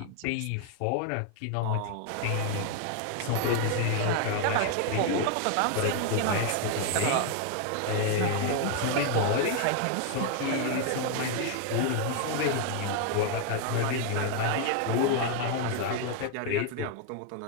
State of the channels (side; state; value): both; different; correlation 0.00